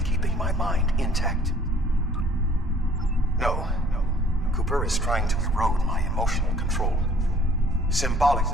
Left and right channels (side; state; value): both; normal; correlation 0.57